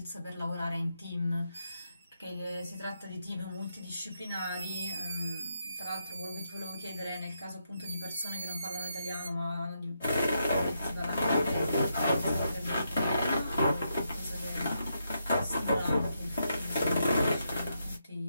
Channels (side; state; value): both; inverted; correlation -0.82